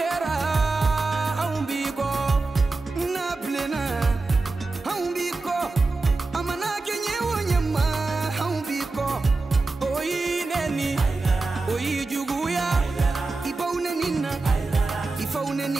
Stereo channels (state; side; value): quieter; left; 3.6 dB